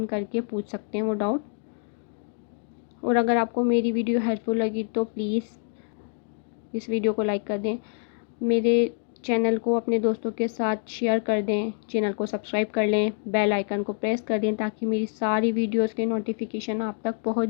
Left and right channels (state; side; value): silent; right; 61 dB below the other